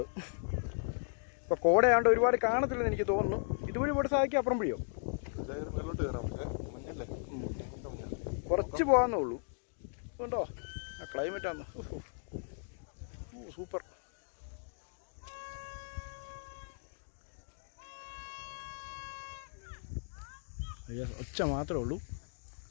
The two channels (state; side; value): silent; right; digital silence